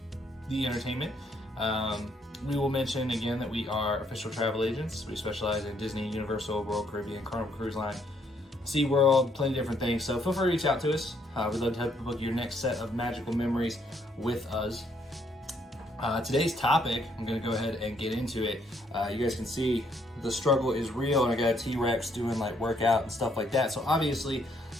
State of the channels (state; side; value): normal; both; correlation 0.70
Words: the entertainment. We will mention again that we are official travel agents. We specialize in Disney, Universal, World Caribbean, Carnival Cruise Line, SeaWorld, plenty of different things. So feel free to reach out to us. We'd love to help you book your next set of magical memories with us. Today's topic, I'm going to go ahead and get into it. You guys can see the struggle is real, and I got a T-Rex doing like workout and stuff like that. So obviously